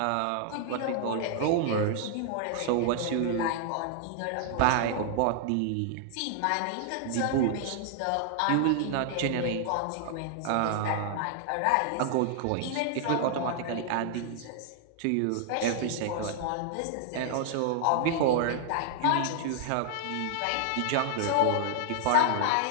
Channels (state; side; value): different; both; correlation 0.00